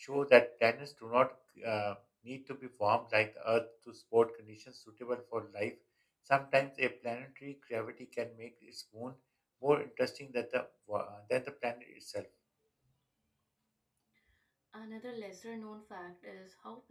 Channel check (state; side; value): identical; both; correlation 1.00